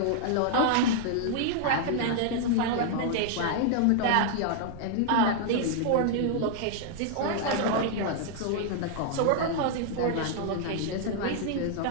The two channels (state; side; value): different; both; correlation -0.01